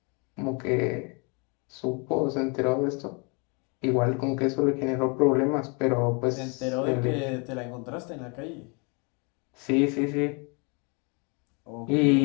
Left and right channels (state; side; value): quieter; right; 33.0 dB